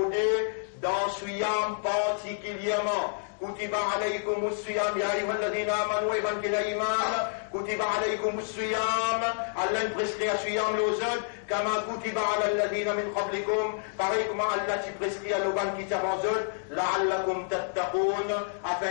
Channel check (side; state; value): right; silent; digital silence